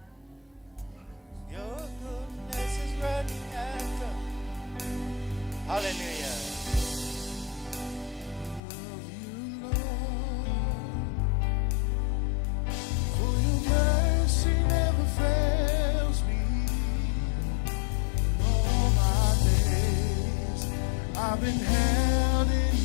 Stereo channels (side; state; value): right; drops out; at 8.6 s